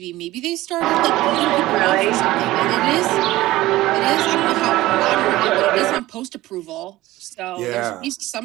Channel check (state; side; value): quieter; left; 17.1 dB